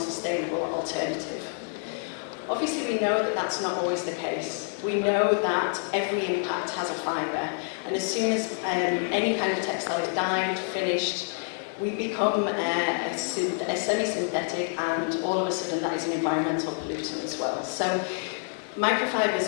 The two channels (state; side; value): silent; right; 60 dB below the other